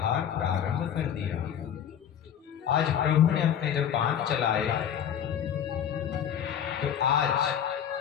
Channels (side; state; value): right; quieter; 9.1 dB